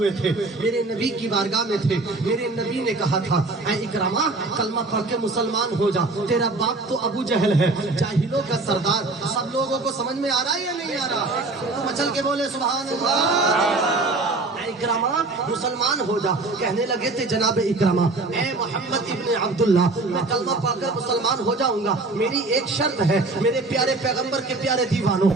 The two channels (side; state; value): left; quieter; 3.3 dB